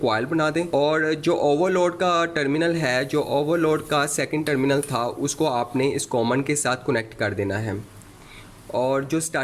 बना दें। और जो ओवरलोड का टर्मिनल है, जो ओवरलोड का सेकंड टर्मिनल था, उसको आपने इस कॉमन के साथ कनेक्ट कर देना है। और जो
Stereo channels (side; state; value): both; identical; correlation 1.00